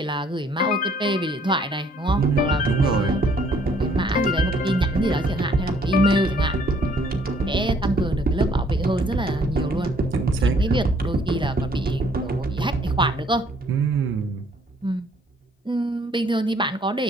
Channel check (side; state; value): both; normal; correlation 0.62